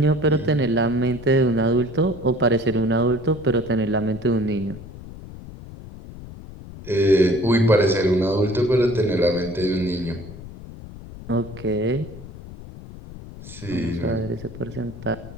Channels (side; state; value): left; noise; rumble, 15 dB below the sound